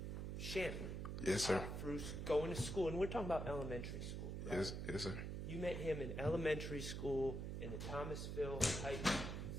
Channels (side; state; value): right; noise; hum, 3 dB below the sound